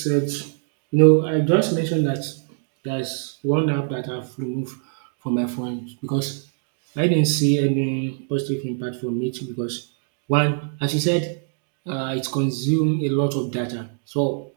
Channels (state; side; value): silent; left; 63 dB below the other